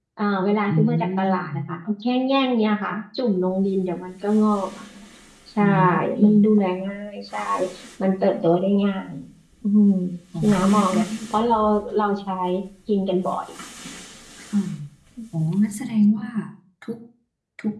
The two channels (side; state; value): both; identical; correlation 1.00